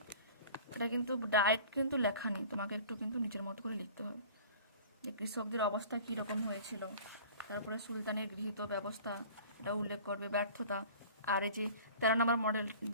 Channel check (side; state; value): both; inverted; correlation -0.43